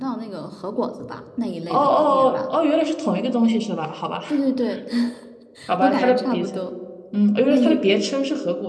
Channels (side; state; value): both; identical; correlation 1.00